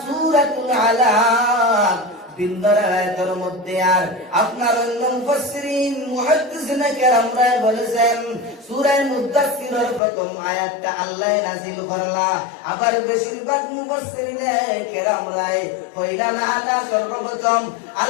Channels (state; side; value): drops out; right; at 10.0 s